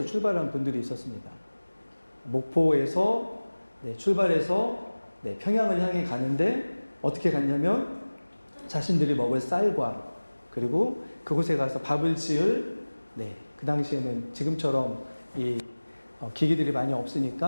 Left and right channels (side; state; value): both; inverted; correlation -1.00